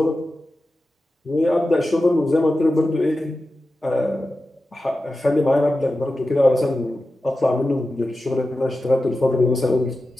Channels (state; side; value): normal; both; correlation 0.93